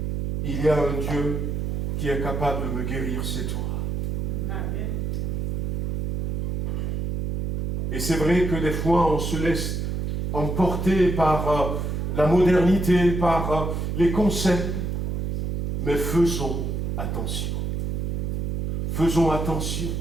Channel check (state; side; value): noise; right; hum, 1 dB below the sound